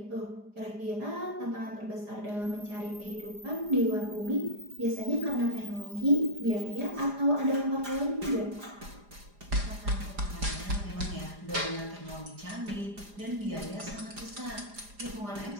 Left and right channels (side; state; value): left; late; 4.9 ms